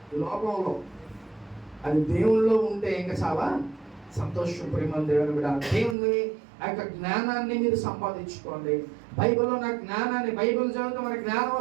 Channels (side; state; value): left; drops out; at 6.0 s